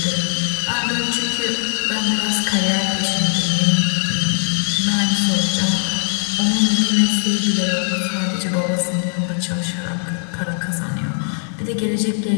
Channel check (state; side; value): silent; right; 65 dB below the other